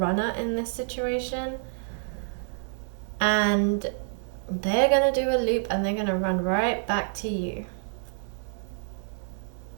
in this situation, and they're going to do a loop and they're going to run right back to you.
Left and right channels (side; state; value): left; silent; 60 dB below the other